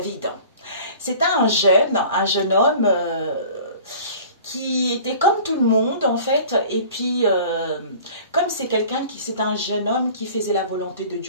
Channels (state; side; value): inverted; both; correlation -0.45